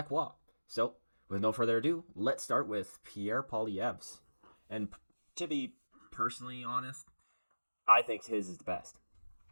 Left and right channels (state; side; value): inverted; both; correlation -1.00